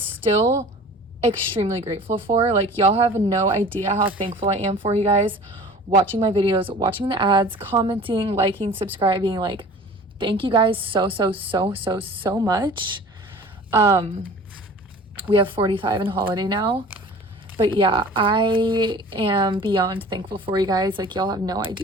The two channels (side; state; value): both; normal; correlation 0.43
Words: extremely grateful for. Like, y'all have no idea how thankful I am for you guys watching my videos, watching the ads, commenting, liking, subscribing. Like, thank you guys so much. We have 45 in holiday now. But yeah, I am beyond thankful for you guys. Like, y'all have no